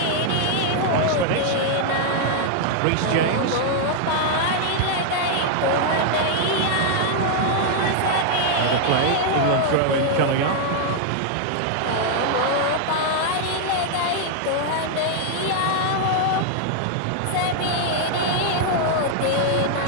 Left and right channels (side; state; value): both; different; correlation 0.00